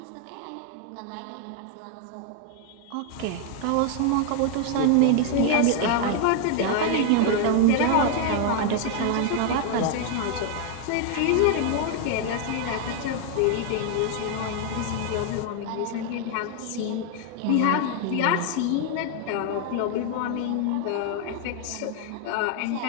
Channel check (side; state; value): both; different; correlation 0.00